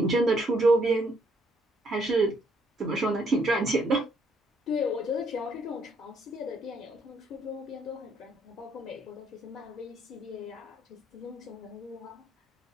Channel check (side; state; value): both; normal; correlation 0.70